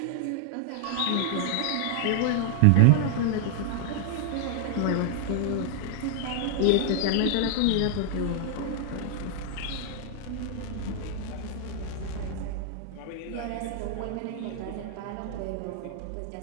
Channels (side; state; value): both; different; correlation -0.01